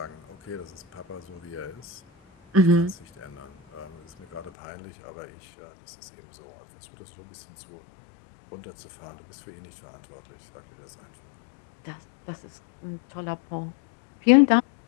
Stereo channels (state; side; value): drops out; right; at 4.5 s